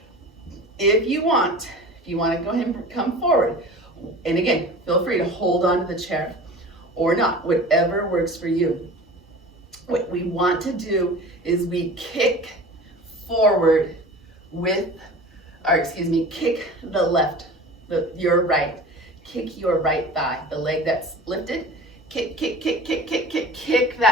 If you want to go ahead and come forward, and again, feel free to hold on to the chair or not, whatever works for you. What we want to do is we kick forward kick the left, your right, kick your right thigh, the leg that's lifted, kick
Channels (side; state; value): both; normal; correlation 0.38